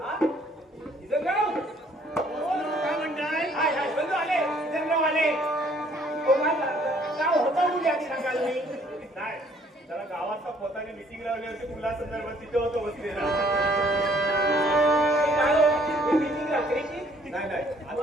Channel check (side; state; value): both; normal; correlation 0.61